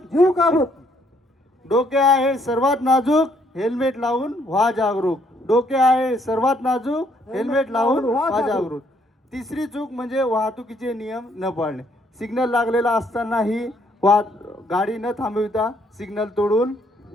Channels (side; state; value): both; normal; correlation 0.68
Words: जीव काबूत. डोके आहे सर्वात नाजूक, हेल्मेट लावून व्हा जागरूक. डोके आहे सर्वात नाजूक, हेल्मेट लावून व्हा जागरूक. तिसरी चूक म्हणजे वाहतुकीचे नियम न पाळणे. सिग्नल लागलेला असतानाही गाडी न थांबविता सिग्नल तोडून